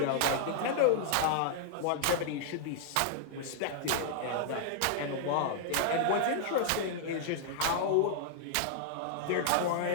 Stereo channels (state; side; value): different; both; correlation -0.01